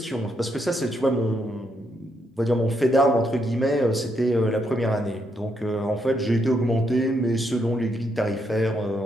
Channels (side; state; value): both; normal; correlation 0.78